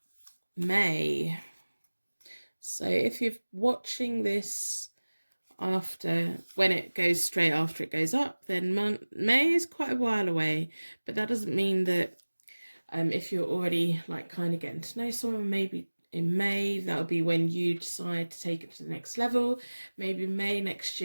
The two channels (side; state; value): both; inverted; correlation -1.00